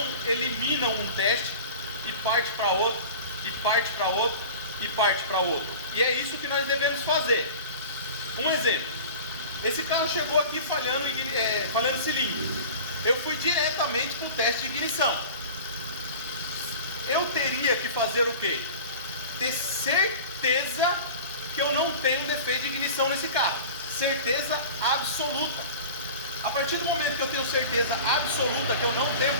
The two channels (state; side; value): inverted; both; correlation -0.37